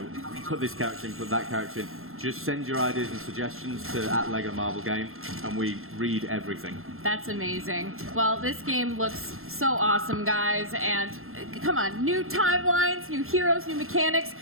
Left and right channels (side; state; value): left; late; 0.61 ms